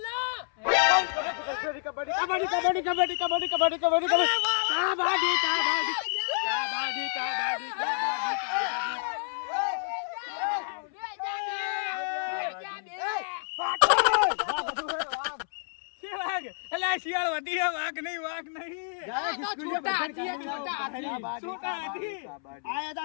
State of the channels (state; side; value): silent; right; 58 dB below the other